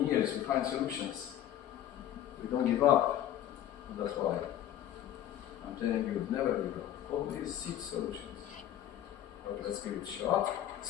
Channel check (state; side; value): quieter; right; 11.7 dB